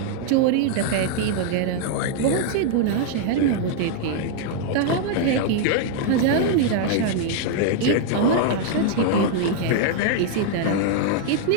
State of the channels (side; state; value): both; different; correlation 0.00